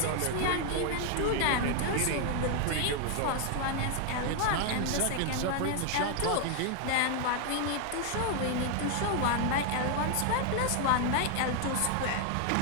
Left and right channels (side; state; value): both; different; correlation 0.00